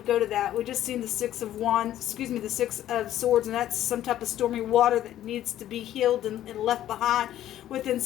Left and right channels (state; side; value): quieter; right; 12.4 dB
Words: go to that. We just seen the Six of Swords, and that's some type of stormy water that needs to be healed and left behind within